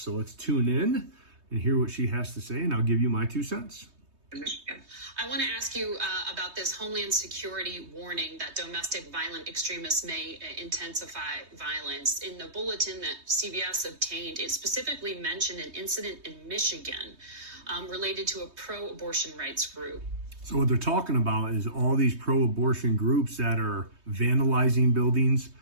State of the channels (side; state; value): left; late; 3.2 ms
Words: let's tune in and hear what she has to say, and I'll give you my 2 cents. I want to ask you about this Homeland Security warning that domestic violent extremists may intensify violence. In the bulletin that CBS obtained, it specifically mentioned an incident in Michigan related to a pro-abortion rights group. So what they're talking about is all these pro-abortion groups that are vandalizing buildings.